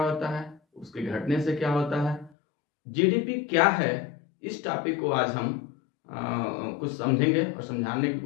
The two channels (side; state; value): right; drops out; at 2.3 s